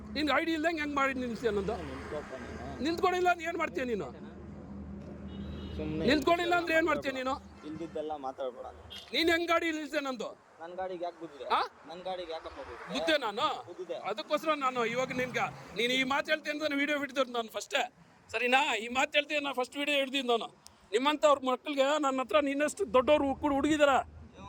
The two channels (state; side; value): identical; both; correlation 1.00